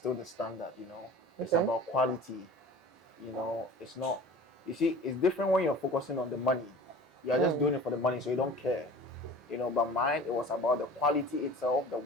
the standard. It's about quality. It's not. You see, it's different when you're focusing on the money. You are just doing it for the money, so you don't care. But mine, it was about the quality itself, the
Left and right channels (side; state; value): both; normal; correlation 0.40